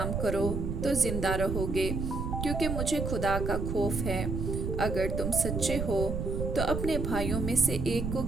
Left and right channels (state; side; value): noise; right; rumble, 2 dB below the sound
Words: करो तो जिंदा रहोगे, क्योंकि मुझे खुदा का खौफ है। अगर तुम सच्चे हो तो अपने भाइयों में से एक को